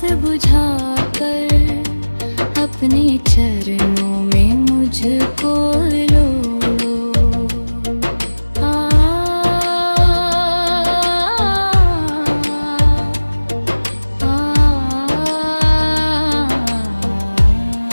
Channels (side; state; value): both; inverted; correlation -1.00